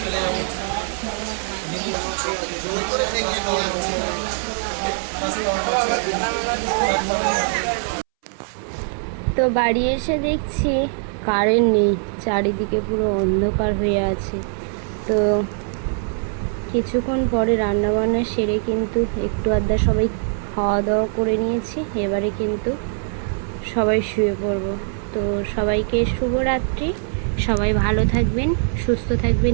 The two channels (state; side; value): silent; left; 64 dB below the other